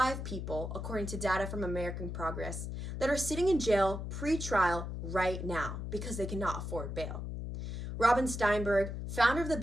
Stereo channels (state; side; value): noise; left; hum, 5 dB below the sound